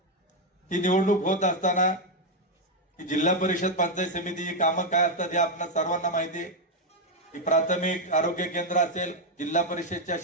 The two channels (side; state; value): both; normal; correlation 0.04